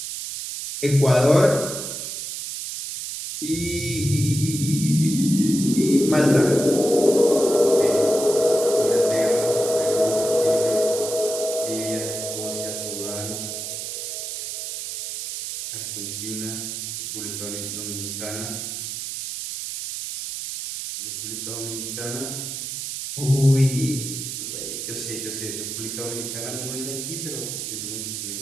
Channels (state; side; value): noise; right; hiss, 6 dB below the sound